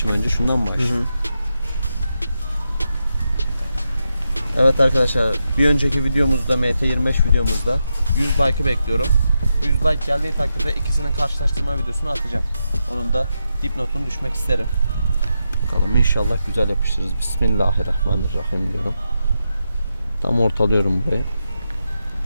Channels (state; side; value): inverted; both; correlation -0.86